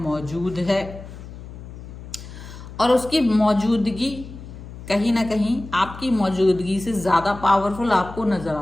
है, और उसकी मौजूदगी कहीं ना कहीं आपकी मौजूदगी से ज़्यादा पावरफुल आपको नज़र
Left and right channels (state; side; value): noise; left; hum, 14 dB below the sound